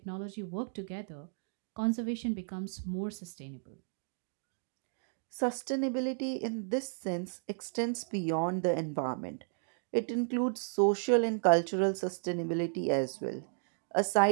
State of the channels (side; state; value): left; silent; digital silence